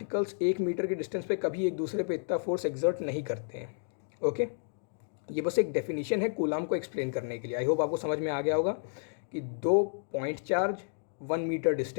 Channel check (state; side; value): silent; right; digital silence